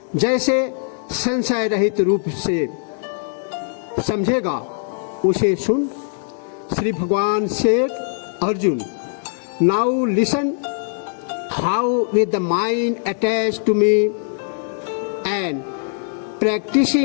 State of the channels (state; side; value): silent; right; digital silence